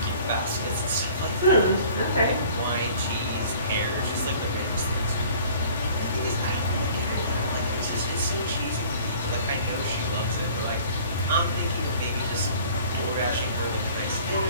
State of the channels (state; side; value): inverted; both; correlation -0.50